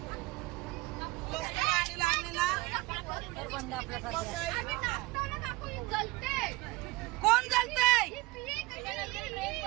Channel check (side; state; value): left; quieter; 21.5 dB